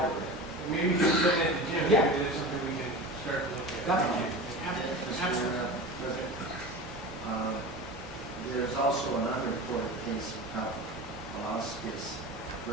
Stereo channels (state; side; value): normal; both; correlation 0.31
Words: Maybe you should send it to Jim. Yeah. Maybe it's something we can start to look at. Definitely. Mr. President, there's also an unreported case of Palauskas